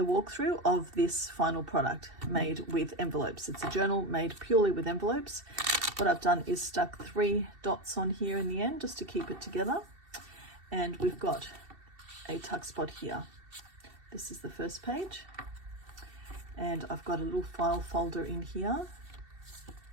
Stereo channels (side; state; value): left; late; 2.7 ms